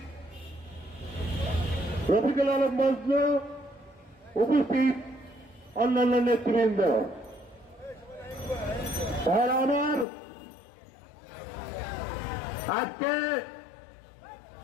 রফিকুল আলম মজনু, উপস্থিত অন্যান্য নেতৃবৃন্দ। আর আমার আজকে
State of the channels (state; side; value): drops out; right; at 10.1 s